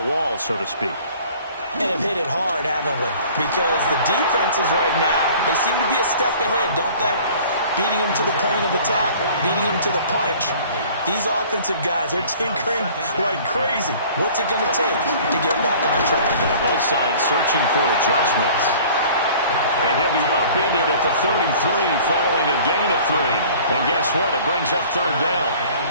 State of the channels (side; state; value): both; inverted; correlation -0.48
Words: wall, so to speak. And have hit it hard, haven't we? Because the defenses right now, they seem to be a step ahead, don't they? Beating them to the point of attack, beating them to the punch. These offensive guys, they're tinkering like crazy. What's it going to take to get back on track? Yeah, both sides searching for adjustments. And he'll be upended at the 33 following a gain of 3. And guess what? It brings up 3rd down.